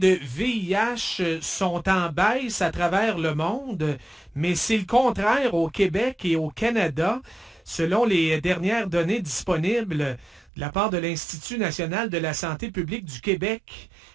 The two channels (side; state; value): left; drops out; at 10.5 s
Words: VIH sont en baisse à travers le monde, mais c'est le contraire au Québec et au Canada. Selon les dernières données disponibles de la part de l'Institut national de la santé publique du Québec,